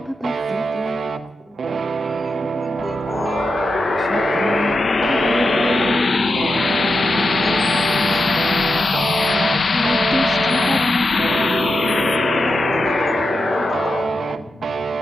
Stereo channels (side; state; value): both; normal; correlation 0.88